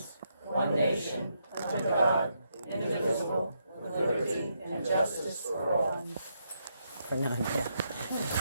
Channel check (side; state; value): both; inverted; correlation -0.79